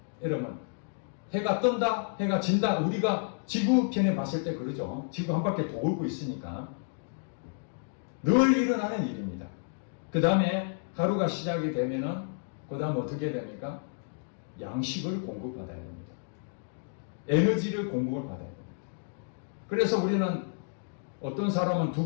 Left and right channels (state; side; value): silent; right; digital silence